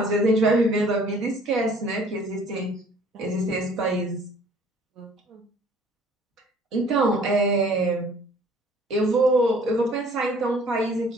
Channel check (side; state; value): both; normal; correlation 0.54